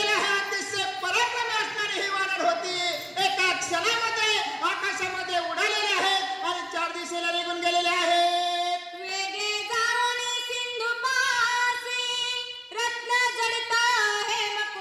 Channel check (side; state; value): both; identical; correlation 1.00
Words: आहे. अतिशय पराक्रमी असणारी ही वानर होती. एका क्षणामध्ये आकाशामध्ये उडालेले आहेत आणि 4 दिशेला निघून गेलेले आहेत. वेगे जाऊन सिंधुपासी रत्न जडित